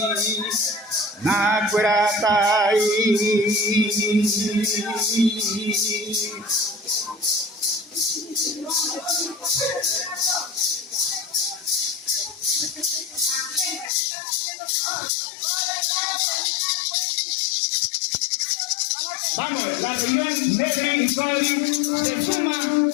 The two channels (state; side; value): drops out; right; at 13.9 s